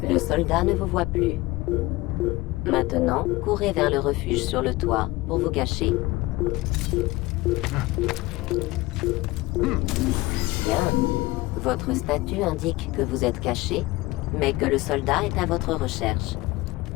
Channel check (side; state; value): right; quieter; 20.4 dB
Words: Le soldat ne vous voit plus. Maintenant, courez vers le refuge sur le toit pour vous cacher. Bien. Votre statut indique que vous êtes caché, mais que le soldat est à votre recherche.